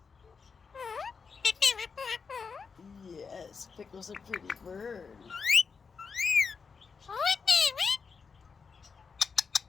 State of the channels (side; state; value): right; quieter; 5.4 dB